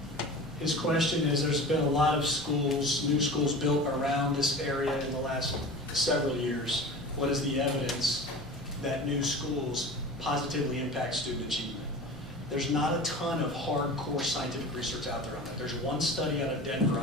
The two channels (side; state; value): both; normal; correlation 0.35